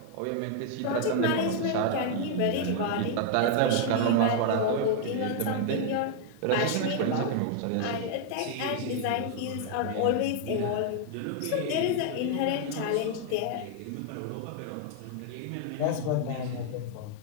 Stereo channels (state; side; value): different; both; correlation 0.00